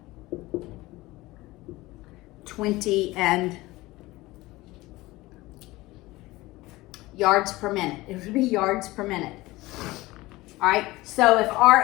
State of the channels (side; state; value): right; quieter; 19.6 dB